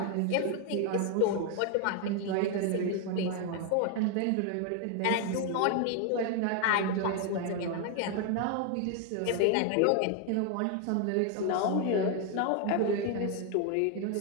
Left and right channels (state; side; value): different; both; correlation 0.01